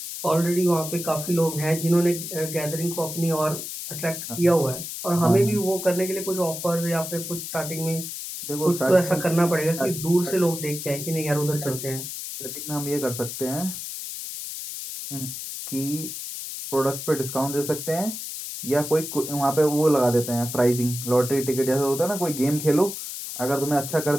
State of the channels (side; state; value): left; noise; hiss, 7 dB below the sound